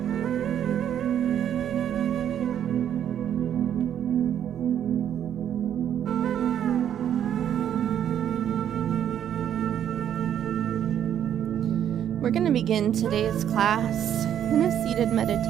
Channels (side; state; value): left; quieter; 9.9 dB